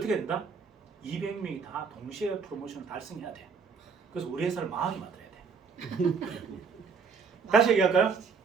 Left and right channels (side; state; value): left; quieter; 5.5 dB